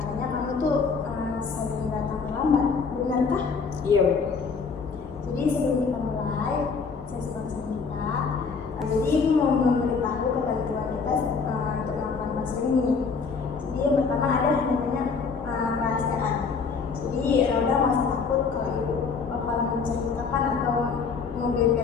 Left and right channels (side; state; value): right; quieter; 5.2 dB